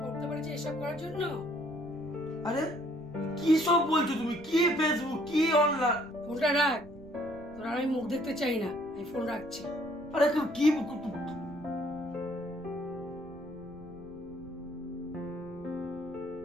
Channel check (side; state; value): right; noise; rumble, 20 dB below the sound